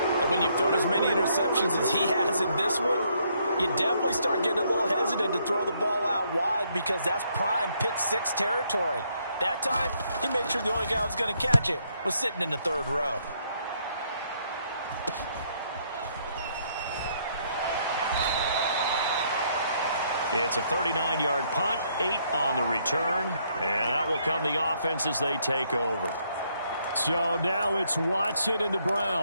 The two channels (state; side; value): inverted; both; correlation -0.71